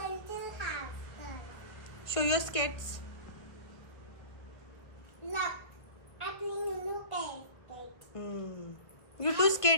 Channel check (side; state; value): right; late; 1.5 ms